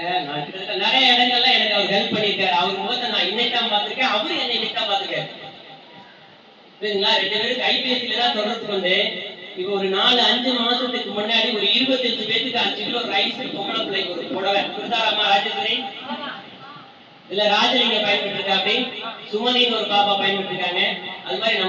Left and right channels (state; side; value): identical; both; correlation 1.00